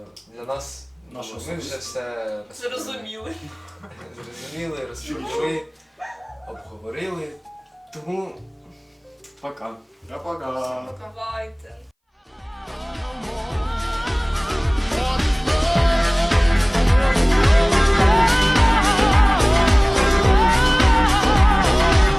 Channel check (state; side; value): identical; both; correlation 1.00